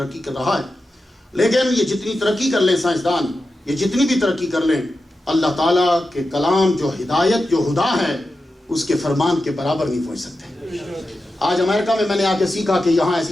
کر رہا ہے، لیکن یہ جتنی ترقی کر لیں سائنسدان، یہ جتنی بھی ترقی کر لیں، اللہ تعالیٰ کے کلام جو ہدایت جو ہدا ہے اس کے فرمان کے برابر نہیں پہنچ سکتے. آج امریکہ میں نے آ کے سیکھا کہ یہاں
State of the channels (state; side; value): normal; both; correlation 0.91